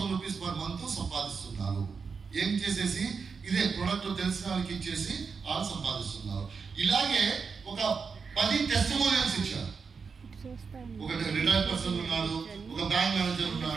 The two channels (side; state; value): left; quieter; 5.4 dB